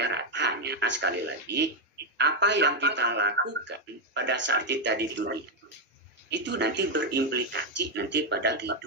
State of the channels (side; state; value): both; normal; correlation 0.03